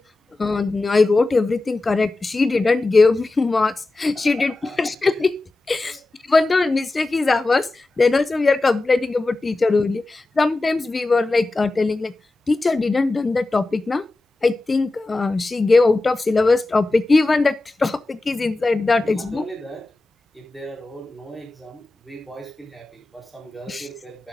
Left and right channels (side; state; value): right; quieter; 3.1 dB